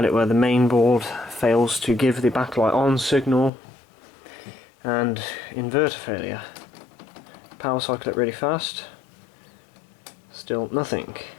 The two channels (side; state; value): right; drops out; at 3.5 s